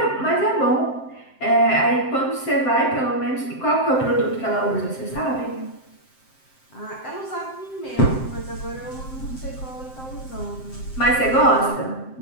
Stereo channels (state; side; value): late; right; 7.7 ms